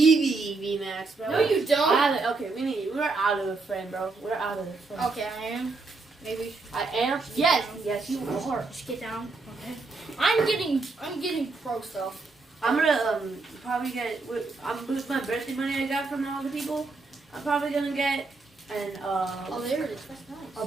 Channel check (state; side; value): quieter; left; 3.8 dB